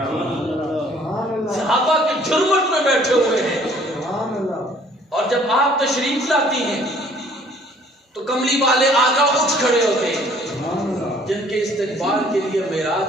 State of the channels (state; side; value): normal; both; correlation 0.57